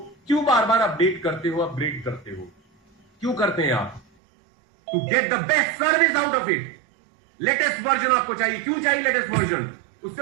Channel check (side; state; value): left; drops out; at 4.0 s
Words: क्यों बार बार अपडेट करते हो, अपग्रेड करते हो? क्यों करते हैं आप? To get the best service out of it. Latest version आपको चाहिए। क्यों चाहिए लेटेस्ट वर्जन? उससे